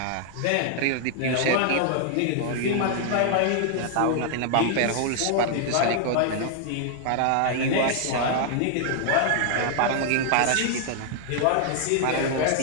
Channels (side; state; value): both; different; correlation 0.00